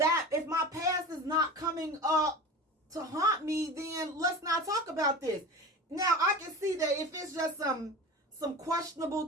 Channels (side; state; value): both; normal; correlation 0.32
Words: past is not coming up to haunt me, then let's not talk about this. Now, I can see that if it's just some